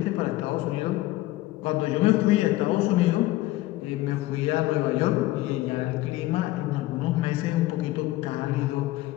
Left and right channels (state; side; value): quieter; right; 17.3 dB